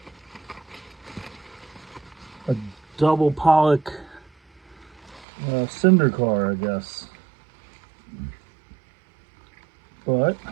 pollock cinder car, I guess. But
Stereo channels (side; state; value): left; drops out; at 5.2 s